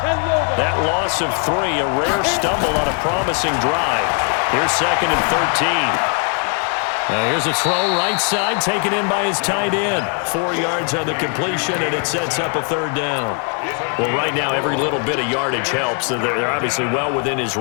That loss of 3, a rare stumble on a promising drive. Here's 2nd and 13. Here's a throw right side, taken in by his tight end. 4 yards on the completion, and it sets up a third down. Well, right now, every little bit of yardage helps. They're obviously well within his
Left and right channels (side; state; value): right; quieter; 39.7 dB